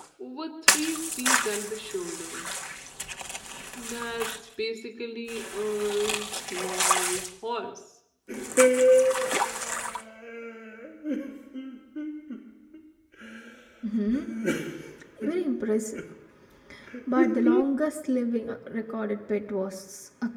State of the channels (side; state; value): both; identical; correlation 1.00